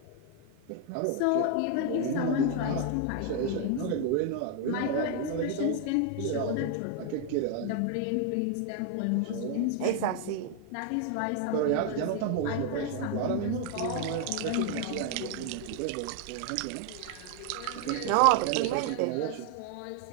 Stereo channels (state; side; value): different; both; correlation 0.00